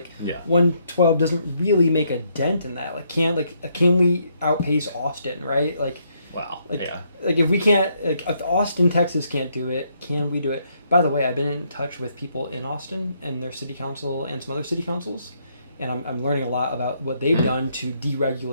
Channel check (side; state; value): both; inverted; correlation -0.73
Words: Yeah. 112 doesn't really make a dent in that. Like can we outpace Austin, right? Wow. Like, Yeah. like if we can't, like if Austin, Texas can't do it, can we do it? By the way, I've been in touch with people in Austin and their city council and some other city councils, and I'm learning a lot about what they've done to